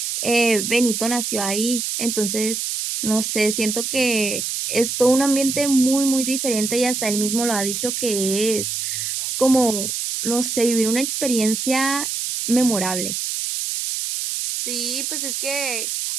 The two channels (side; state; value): right; noise; hiss, 2 dB below the sound